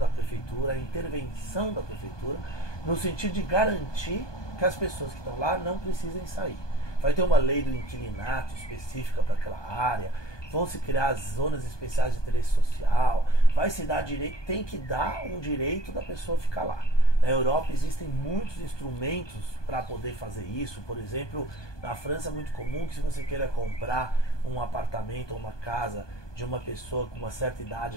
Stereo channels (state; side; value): late; right; 1.2 ms